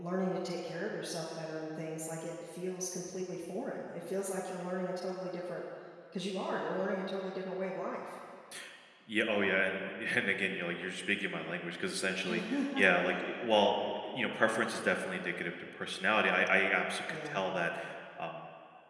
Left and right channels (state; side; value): identical; both; correlation 1.00